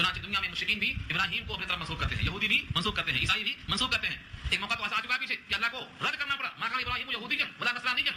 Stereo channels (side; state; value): both; identical; correlation 1.00